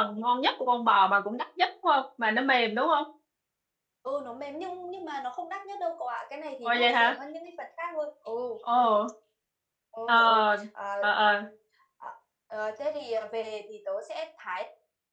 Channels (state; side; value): identical; both; correlation 1.00